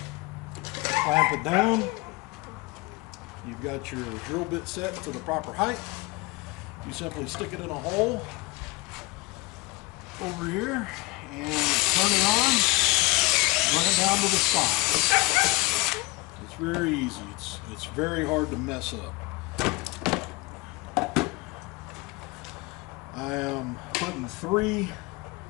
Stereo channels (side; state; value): right; quieter; 24.0 dB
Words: Clamp it down. You've got your drill bit set to the proper height. You simply stick it in a hole over here and turn it on, run it down to the side. It's very easy. It's very hard to mess up. I am putting 3